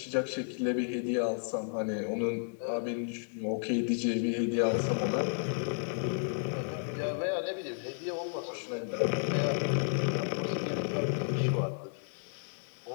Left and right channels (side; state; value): right; silent; 56 dB below the other